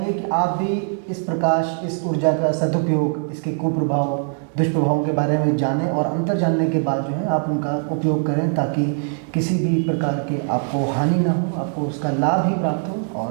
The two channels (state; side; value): silent; left; 63 dB below the other